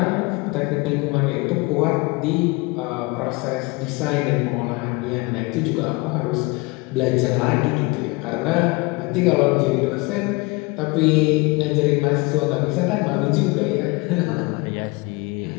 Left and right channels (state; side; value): quieter; right; 25.7 dB